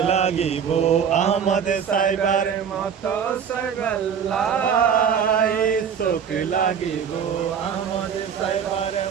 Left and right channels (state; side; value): quieter; left; 7.5 dB